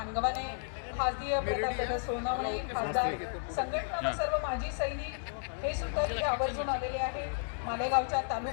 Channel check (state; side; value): silent; right; digital silence